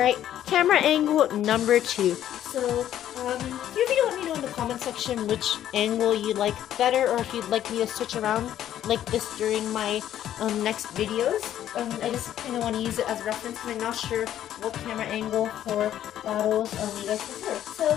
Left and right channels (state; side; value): quieter; right; 11.5 dB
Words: camera angle number 2. So, feel free to let me know in the comment section which angle you like better, or if you'd like me to switch around like this during my next videos. I just kind of want to use it as a reference because I'm not sure what camera angle for battles you guys prefer. So